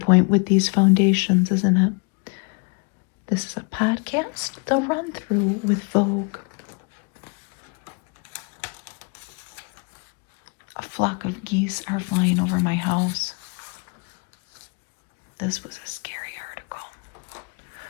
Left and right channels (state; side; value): quieter; right; 34.6 dB